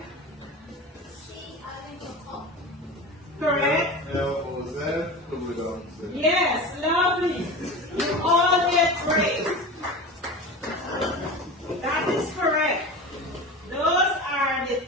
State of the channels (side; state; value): both; normal; correlation 0.30